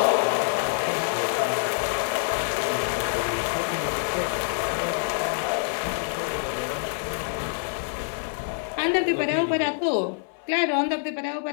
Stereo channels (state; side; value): silent; right; digital silence